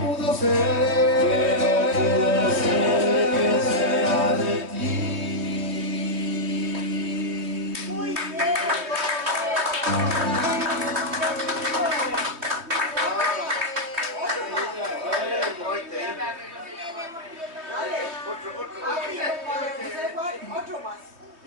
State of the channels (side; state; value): left; late; 3.1 ms